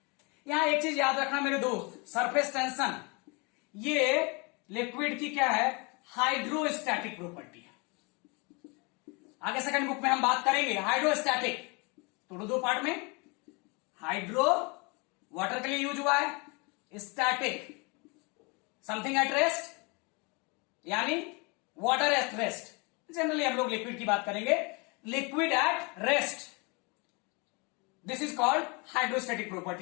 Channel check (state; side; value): quieter; right; 29.8 dB